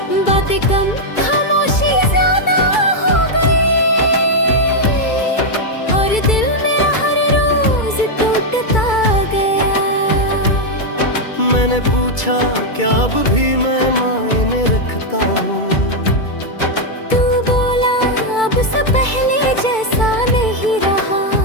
बातें कम खामोशी ज्यादा हो गई, और दिल मेरा हर रोज टूटता गया। मैंने पूछा क्या अब भी मैं मायने रखता हूँ, तू बोला अब से पहले जैसा नहीं रहा।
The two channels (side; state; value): right; late; 2.3 ms